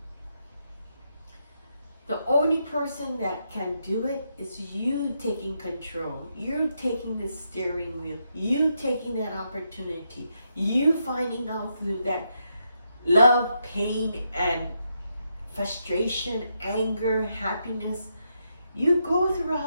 the only person that can do it is you taking control. You taking the steering wheel. You taking that opportunity. You finding out through that love, pain, and frustration, anger, happiness. You go through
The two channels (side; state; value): both; inverted; correlation -0.81